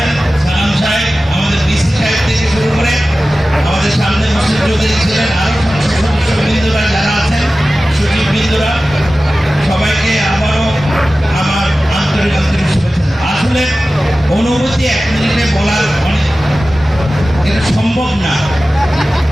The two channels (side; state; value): both; normal; correlation 0.95